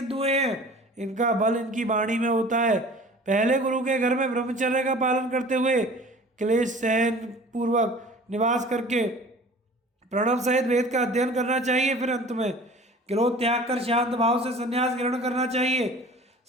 हुए हैं। इनका बल इनकी वाणी में होता है। पहले गुरु के घर में ब्रह्मचर्य का पालन करते हुए क्लेश सहन पूर्वक निवास करके प्रणव सहित वेद का अध्ययन करना चाहिए। फिर अंत में क्रोध त्याग कर शांत भाव से संन्यास ग्रहण करना चाहिए।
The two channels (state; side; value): normal; both; correlation 0.44